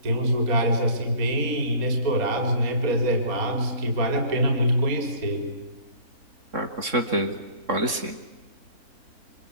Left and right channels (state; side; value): late; left; 3.6 ms